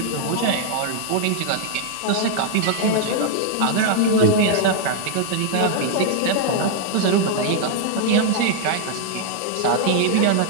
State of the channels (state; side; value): different; both; correlation -0.01